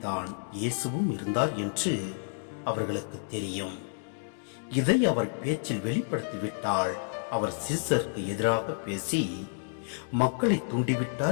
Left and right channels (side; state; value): right; silent; digital silence